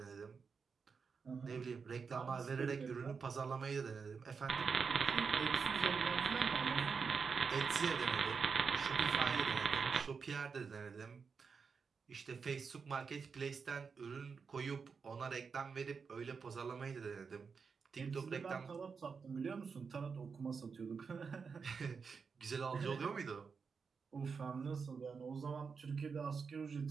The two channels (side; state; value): left; quieter; 5.5 dB